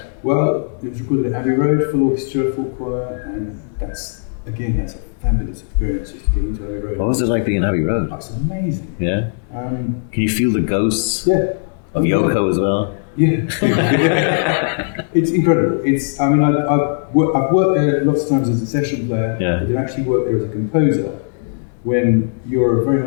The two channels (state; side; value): silent; right; digital silence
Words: Well, it was recorded at Abbey Road, full orchestra, full choir, and that's a fabulous experience just to get into Abbey Road. What was it like being in Abbey Road? It's amazing. Yeah? Can you feel the ghosts of Yoko as well? Yeah. It's incredible. I've worked there lots of times as a session player. Yeah. I did actually work there as a composer. When you're very